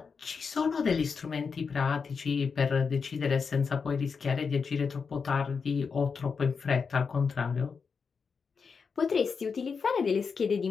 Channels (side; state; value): right; quieter; 5.5 dB